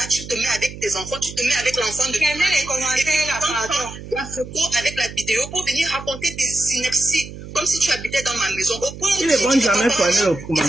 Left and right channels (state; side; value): noise; right; hum, 13 dB below the sound